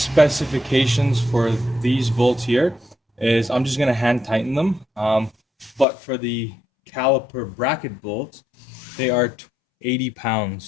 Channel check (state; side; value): drops out; right; at 5.9 s